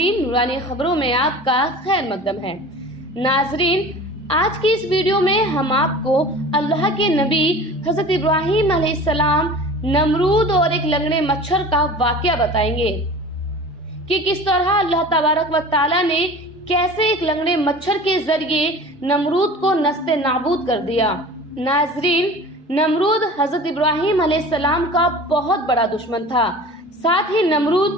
نورانی خبروں میں آپ کا خیر مقدم ہے۔ ناظرین، آج کی اس ویڈیو میں ہم آپ کو اللہ کے نبی حضرت ابراہیم علیہ السلام، نمرود اور ایک لنگڑے مچھر کا واقعہ بتائیں گے کہ کس طرح اللہ تبارک و تعالیٰ نے کیسے ایک لنگڑے مچھر کے ذریعے نمرود کو نست نابود کر دیا۔ ناظرین، نمرود حضرت ابراہیم علیہ السلام کا بہت بڑا دشمن تھا، ساتھ ہی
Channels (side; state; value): both; normal; correlation 0.39